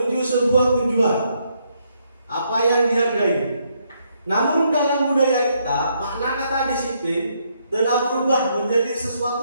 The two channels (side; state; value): both; inverted; correlation -0.74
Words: sebuah tujuan apa yang dihargai. Namun dalam budaya kita, makna kata disiplin telah berubah menjadi